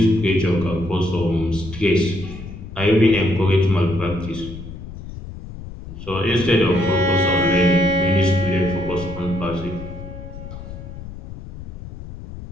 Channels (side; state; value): left; noise; rumble, 12 dB below the sound